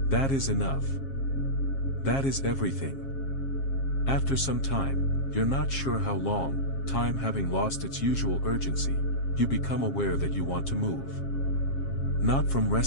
That is enough. That is everything. After some time, you're not sure how long, time having lost its usual urgency, you become aware that you want to move. Not from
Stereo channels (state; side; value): late; right; 7.4 ms